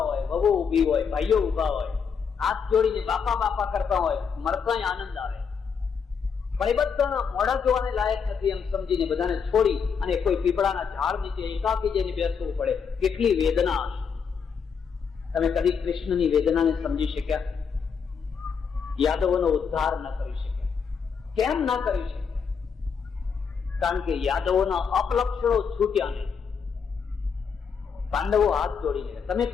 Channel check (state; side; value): quieter; right; 6.3 dB